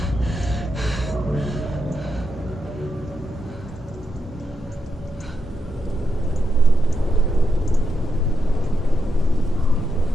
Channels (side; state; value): both; normal; correlation 0.84